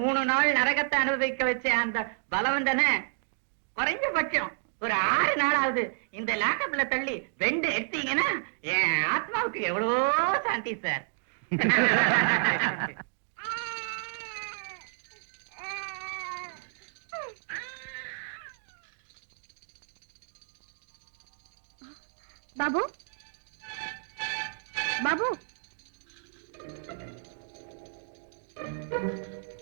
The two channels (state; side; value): silent; left; digital silence